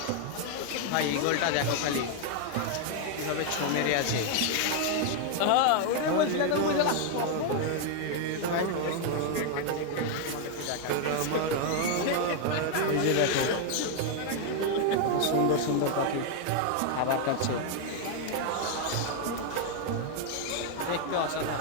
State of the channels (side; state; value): both; different; correlation 0.00